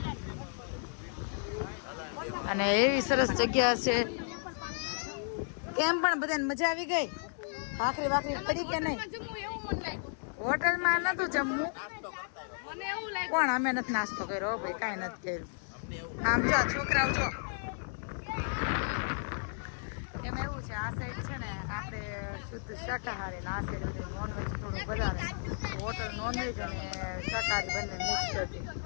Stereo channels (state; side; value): silent; right; digital silence